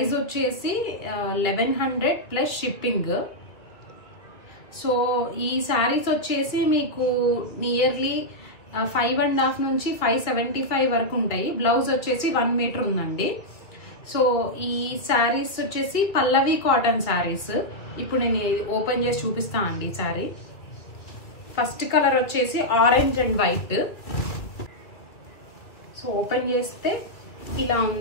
వచ్చేసి 1100 ప్లస్ షిప్పింగ్. సో ఈ శారీస్ వచ్చేసి మీకు నియర్లీ 5.5 నుంచి 575 వరకు ఉంటాయి. బ్లౌజ్ వచ్చేసి 1 మీటర్ ఉందండి. సో ఈ శారీస్ వచ్చేసి పల్లవి కాటన్ శారీస్. ఇప్పుడు నేను ఓపెన్ చేసి చూపిస్తా అండి. శారీ ఫస్ట్ కలర్ వచ్చేసి orange and white. So open చేస్తే ఇలా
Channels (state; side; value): late; right; 2.2 ms